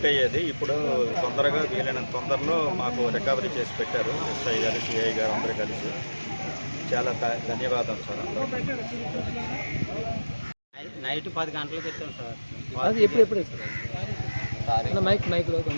అయ్యేది, ఇప్పుడు తొందరగా వీలైనంత తొందరలో మాకు రికవరీ చేసి పెట్టారు. ఎస్ఐ గారు, సిఐ గారు అందరూ కలిసి. చాలా ధన్యవాదాలు సార్ అందరూ. నైట్ 10 గంటలకు ఇస్తాం సార్. అది ఎప్పుడు సార్ మైక్లో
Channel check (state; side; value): inverted; both; correlation -1.00